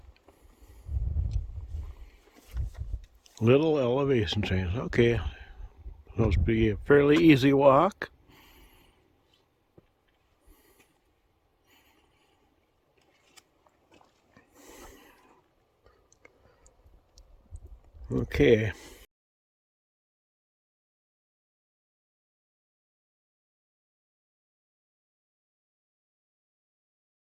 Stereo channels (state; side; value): identical; both; correlation 1.00